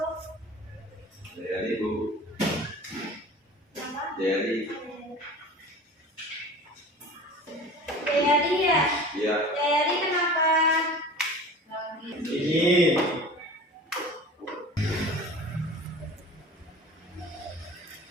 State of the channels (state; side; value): normal; both; correlation 0.38